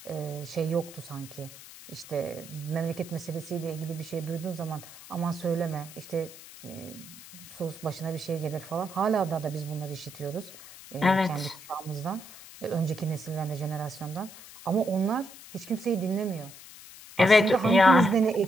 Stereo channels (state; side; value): noise; left; hiss, 17 dB below the sound